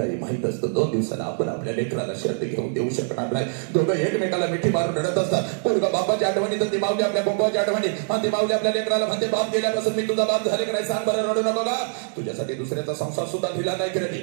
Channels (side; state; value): left; silent; 63 dB below the other